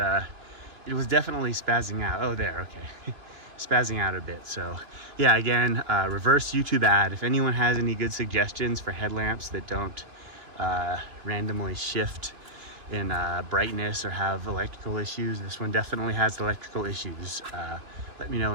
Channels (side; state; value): left; late; 2.8 ms